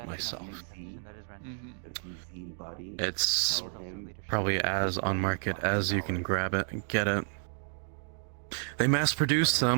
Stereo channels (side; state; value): left; silent; digital silence